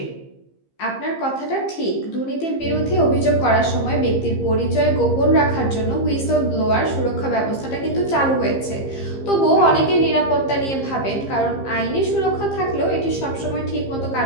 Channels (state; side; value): late; right; 15 ms